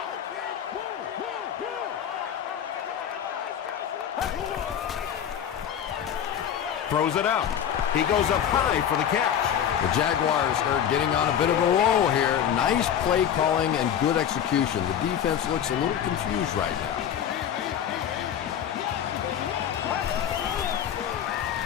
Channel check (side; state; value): right; quieter; 9.2 dB